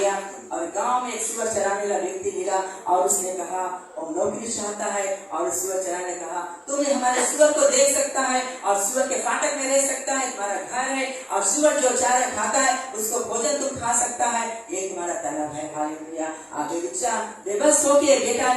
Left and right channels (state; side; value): identical; both; correlation 1.00